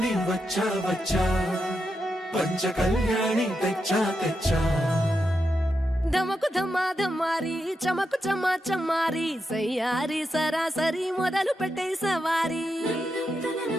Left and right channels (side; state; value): both; normal; correlation 0.86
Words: వచ్చా వచ్చా పంచ కళ్యాణి తెచ్చా తెచ్చా ధమకు ధమా ధమారి చమకు చమా చమారి సయ్యారి సరాసరి మొదలు పెట్టే సవారి